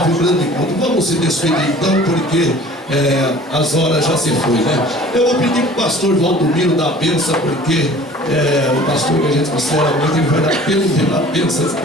o grande encontro. Vamos se despedir então, porque as horas já se foi, né? Eu vou pedir para o pastor Valdomiro dar a bênção, porque o pastor que a gente considera muito, ele vai dar pela bênção.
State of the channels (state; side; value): normal; both; correlation 0.47